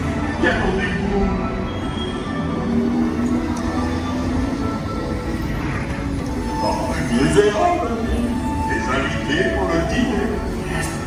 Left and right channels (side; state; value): both; identical; correlation 1.00